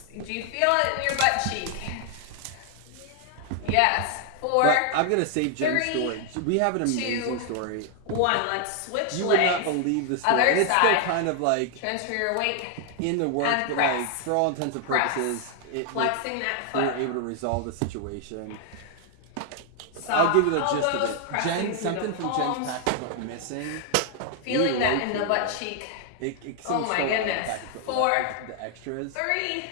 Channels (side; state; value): both; different; correlation 0.00